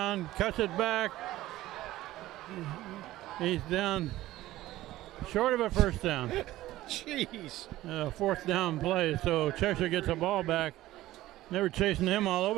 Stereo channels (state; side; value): quieter; left; 15.8 dB